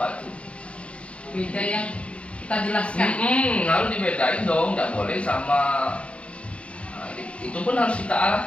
tuh. Beda yang kita jelaskan. Harus dibedain dong, nggak boleh sama. Nah, itu pun harus kita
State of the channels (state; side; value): late; right; 0.061 ms